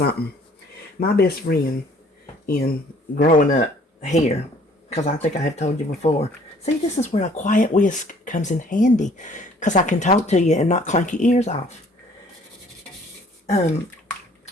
My best friend in growing up here, because I think I have told you before. See, this is where a quiet whisk comes in handy, because I can talk to you and not clank your ears off.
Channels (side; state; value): both; normal; correlation 0.57